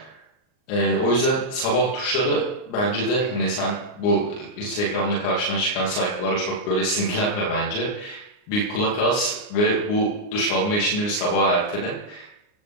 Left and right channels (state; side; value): late; right; 39 ms